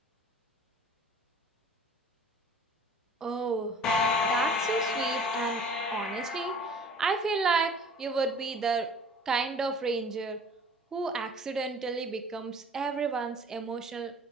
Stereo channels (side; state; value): both; normal; correlation 0.48